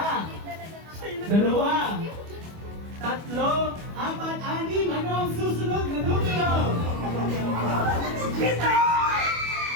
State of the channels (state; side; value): late; left; 25 ms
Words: dalawa, tatlo, apat, anim. Ano ang susunod na numero? Pito!